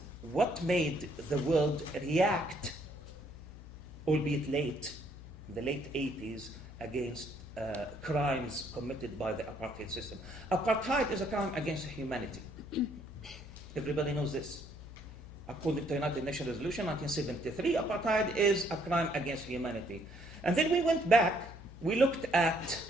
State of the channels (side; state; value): left; noise; hum, 15 dB below the sound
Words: what made the world react, albeit late, in the late 80s, against crimes committed by the apartheid system. Apartheid is a crime against humanity. Everybody knows this. According to United Nations Resolution 1973, apartheid is a crime against humanity. And then we went back, we looked at